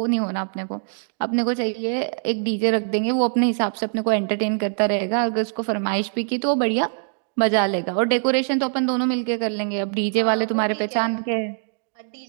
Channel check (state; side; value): silent; left; digital silence